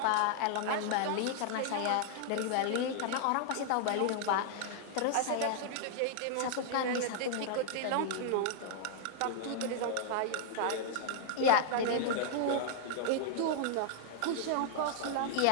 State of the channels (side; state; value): both; different; correlation -0.01